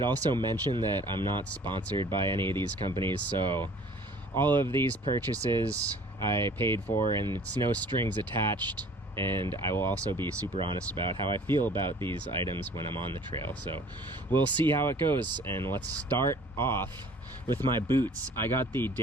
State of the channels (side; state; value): both; normal; correlation 0.51